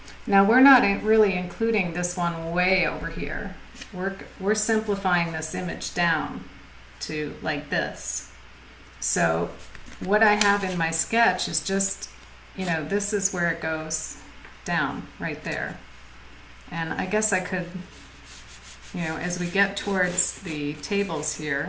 Now we're not really including this one way over here. We're simplifying this image down to like this. So what I have in my sketch is just, you know, this is where it goes down right there. And I guess I could, you know, as we get towards the tables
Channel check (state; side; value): identical; both; correlation 1.00